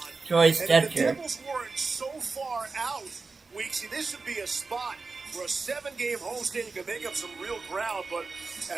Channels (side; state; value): left; quieter; 4.1 dB